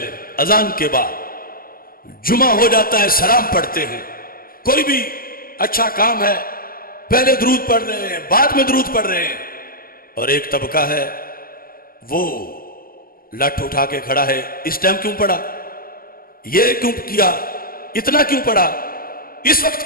اذان کے بعد، جمعہ ہو جاتا ہے سلام پڑھتے ہیں، کوئی بھی اچھا کام ہے پہلے درود پڑھ رہے ہیں بعد میں درود پڑھ رہے ہیں، اور ایک طبقہ ہے وہ لٹ اٹھا کے کھڑا ہے، اس ٹائم کیوں پڑھا، یہ کیوں کیا، اتنا کیوں پڑھا، اس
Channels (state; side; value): late; right; 0.42 ms